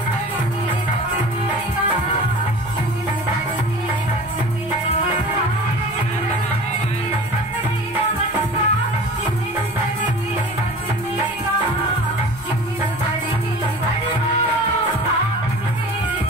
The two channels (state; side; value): noise; left; rumble, 21 dB below the sound